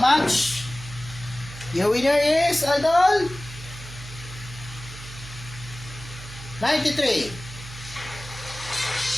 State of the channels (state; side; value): noise; right; hum, 14 dB below the sound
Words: much. Your winner is, idol, 93.